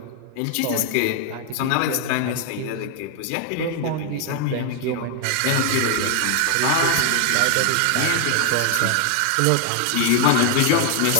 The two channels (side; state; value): both; different; correlation 0.00